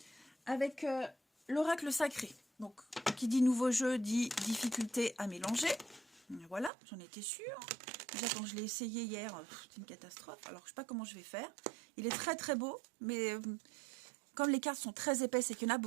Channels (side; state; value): left; drops out; at 6.7 s